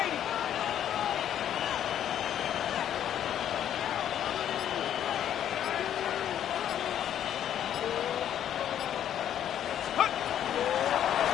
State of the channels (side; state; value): right; quieter; 10.3 dB